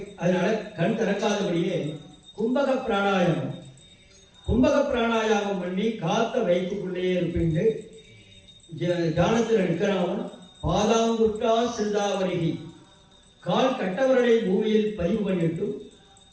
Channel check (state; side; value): identical; both; correlation 1.00